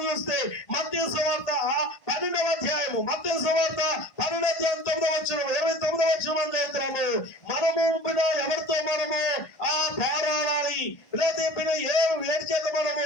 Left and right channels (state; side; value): late; right; 1.5 ms